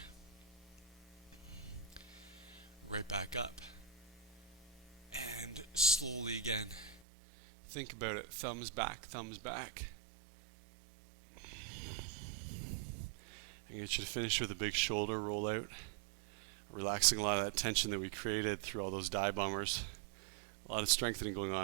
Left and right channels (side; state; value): left; drops out; at 7.0 s